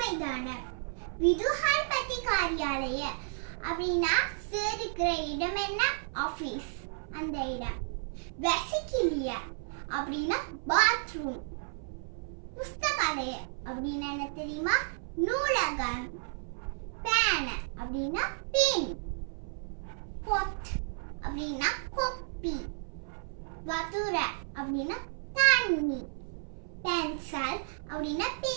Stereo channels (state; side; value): silent; left; 56 dB below the other